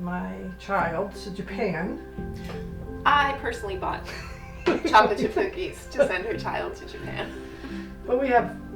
child to Japan. I personally bought chocolate chip cookies to send her child to Japan. But we have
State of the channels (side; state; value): both; identical; correlation 1.00